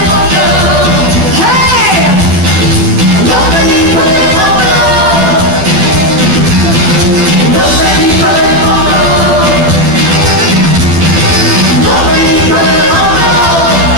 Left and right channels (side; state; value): left; late; 12 ms